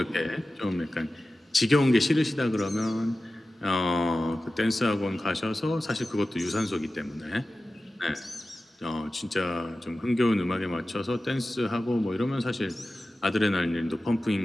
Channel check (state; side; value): normal; both; correlation 0.95